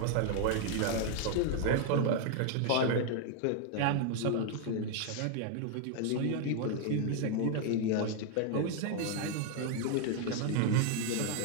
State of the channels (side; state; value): both; different; correlation 0.00